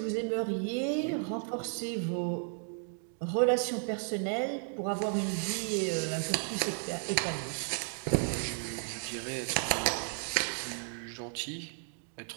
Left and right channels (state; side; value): silent; left; 55 dB below the other